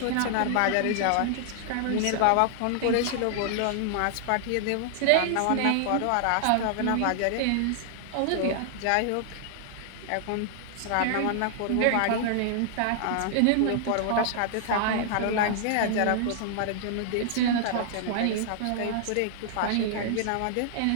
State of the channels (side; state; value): both; different; correlation -0.01